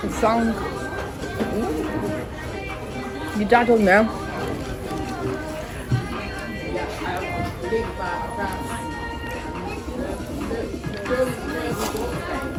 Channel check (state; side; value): identical; both; correlation 1.00